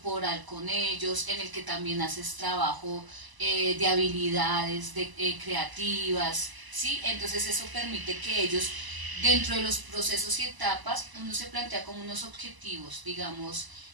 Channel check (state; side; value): late; left; 1.0 ms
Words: con ellos, en el que también haces trabajo de habilidades creativas, ¿sí? Entonces eso permite que ellos, dentro de los procesos y etapas, uno se plantea como unos objetivos, digamos,